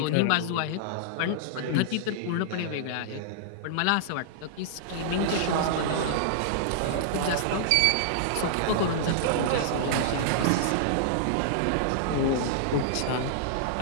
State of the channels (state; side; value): different; both; correlation -0.02